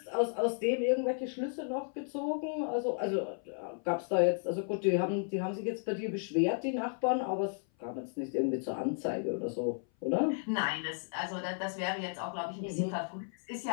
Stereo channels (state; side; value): silent; right; 55 dB below the other